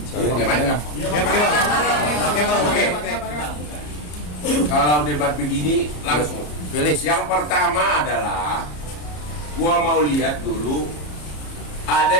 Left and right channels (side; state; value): right; late; 34 ms